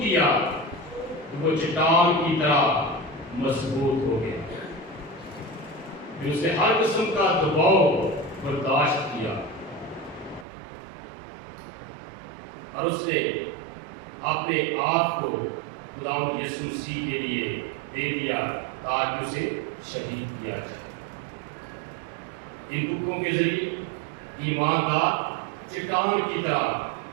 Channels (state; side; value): drops out; left; at 10.5 s